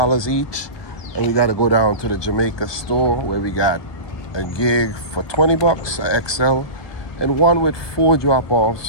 each. And we got to go down to the Jamaica store where we got a gig for 20 bucks, a XL, and one with 4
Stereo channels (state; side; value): late; right; 1.2 ms